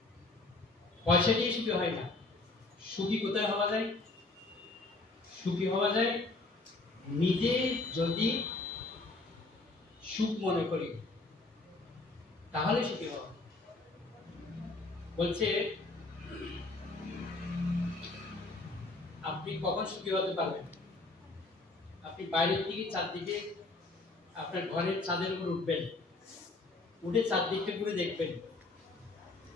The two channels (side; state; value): right; quieter; 3.3 dB